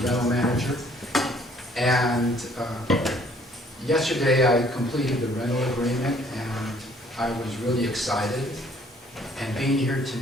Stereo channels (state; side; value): normal; both; correlation 0.60